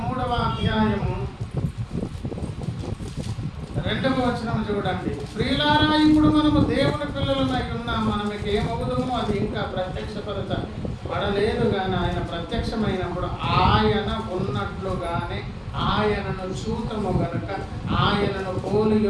3వ అధ్యాయము 2వ వచనం చూడండి. ప్రియులారా, ఇప్పుడు మనము దేవుని పిల్లలమై ఉన్నాం, మనకి ఏమవుతుందో అది ఇంకా ప్రత్యక్షపరచబడలేదు కానీ ఆయన ప్రత్యక్షమైనప్పుడు ఆయన ఉన్నట్లుగానే ఆయనను చూతము గనుక ఆయనను పోలి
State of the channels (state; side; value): identical; both; correlation 1.00